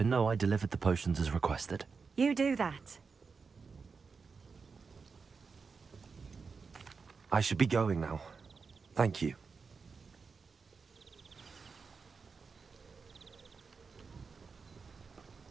know I delivered the potions as requested. You do that. I should be going now. Thank you.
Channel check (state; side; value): quieter; left; 5.0 dB